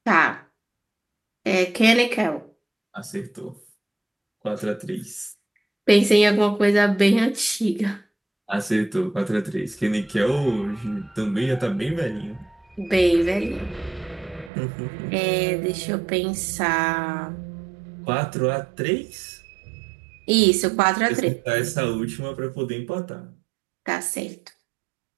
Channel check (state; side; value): drops out; left; at 14.5 s